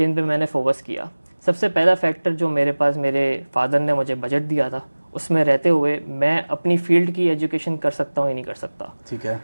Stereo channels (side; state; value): both; inverted; correlation -1.00